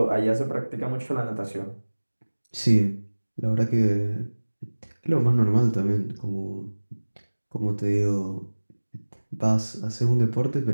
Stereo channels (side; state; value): both; inverted; correlation -1.00